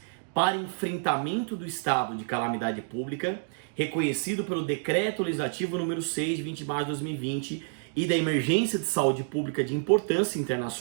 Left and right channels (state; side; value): silent; left; digital silence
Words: para enfrentamento do estado de calamidade pública, reconhecido pelo Decreto Legislativo número 6, de 20 de março de 2020, e da emergência de saúde pública de importância